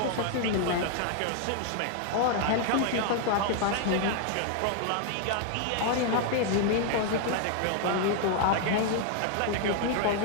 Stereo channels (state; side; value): different; both; correlation 0.00